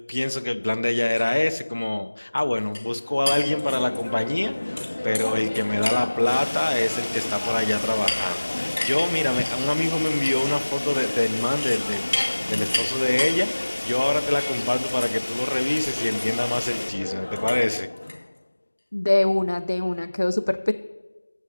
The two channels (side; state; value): both; inverted; correlation -1.00